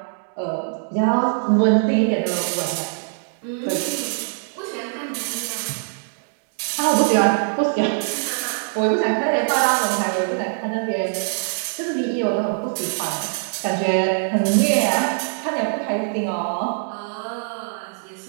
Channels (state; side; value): silent; left; digital silence